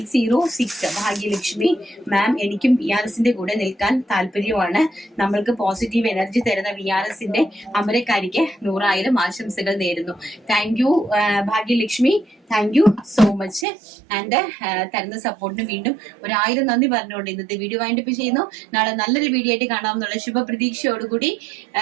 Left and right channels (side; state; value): left; drops out; at 13.7 s